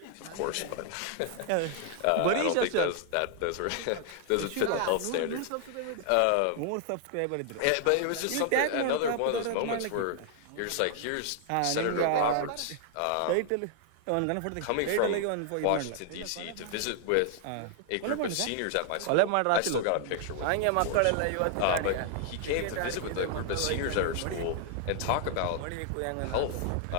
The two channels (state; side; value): different; both; correlation 0.00